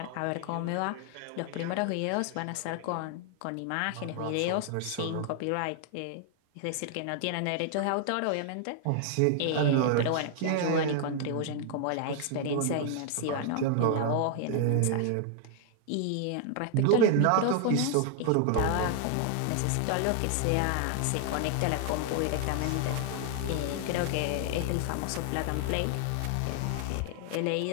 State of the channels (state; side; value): different; both; correlation 0.00